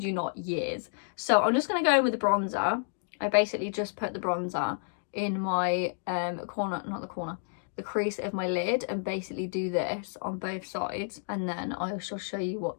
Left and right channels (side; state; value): right; silent; digital silence